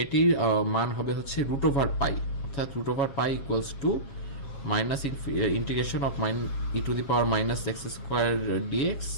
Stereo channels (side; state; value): right; late; 7.3 ms